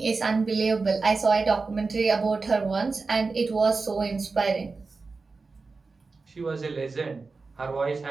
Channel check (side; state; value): left; quieter; 4.1 dB